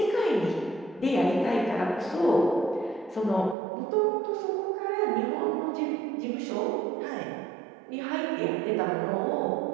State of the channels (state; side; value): drops out; left; at 3.6 s